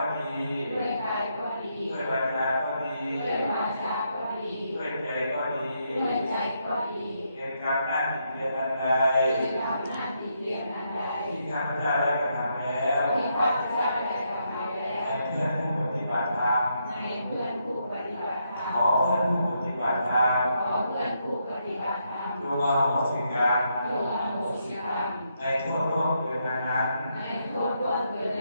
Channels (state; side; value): inverted; both; correlation -0.79